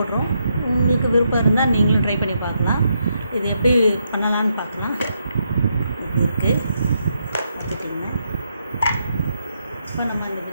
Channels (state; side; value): inverted; both; correlation -0.80